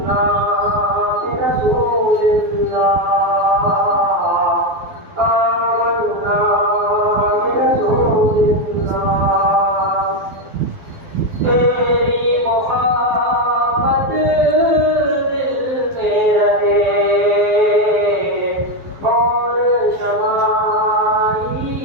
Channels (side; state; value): left; late; 12 ms